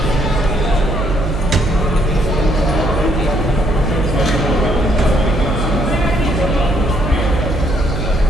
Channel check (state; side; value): noise; right; hum, 3 dB below the sound